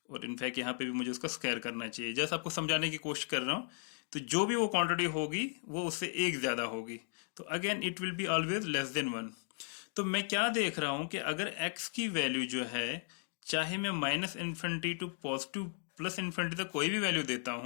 और इनफैक्ट यहाँ पे भी मुझे उसका स्क्वायर करना चाहिए, जैसे आपको समझाने की कोशिश कर रहा हूँ। तो जो भी वो क्वांटिटी होगी वो उससे एक ज्यादा होगी, तो again it will be always less than 1। तो मैं क्या देख रहा हूं कि अगर x की वैल्यू जो है, चाहे मैं -infinity to positive plus infinity तक कोई भी वैल्यू देता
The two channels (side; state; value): right; silent; 54 dB below the other